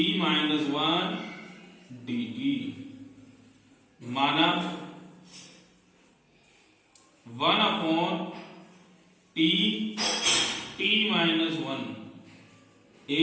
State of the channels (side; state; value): both; identical; correlation 1.00